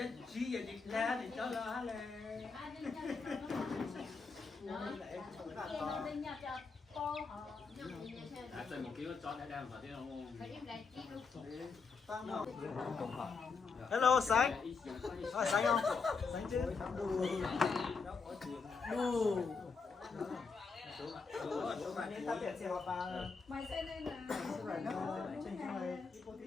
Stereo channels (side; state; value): right; quieter; 4.8 dB